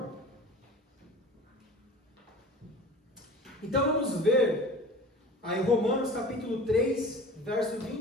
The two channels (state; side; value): normal; both; correlation 0.40